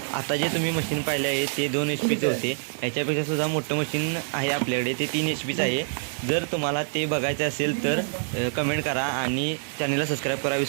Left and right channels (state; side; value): silent; left; digital silence